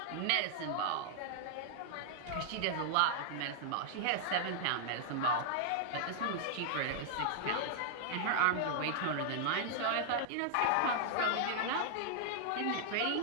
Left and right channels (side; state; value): both; different; correlation -0.01